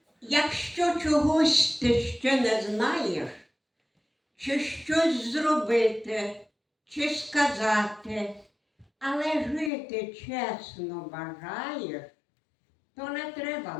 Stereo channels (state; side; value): drops out; right; at 9.7 s